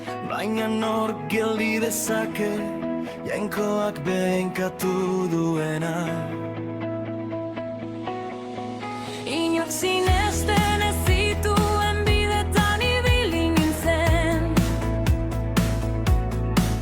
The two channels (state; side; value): identical; both; correlation 1.00